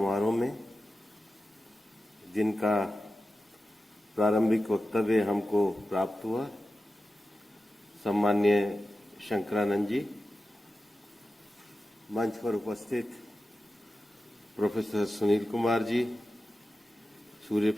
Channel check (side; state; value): both; normal; correlation 0.93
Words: में जिनका प्रारंभिक वक्तव्य हमको प्राप्त हुआ, सम्माननीय शंकरानंद जी, मंच पर उपस्थित प्रोफेसर सुनील कुमार जी, सूर्य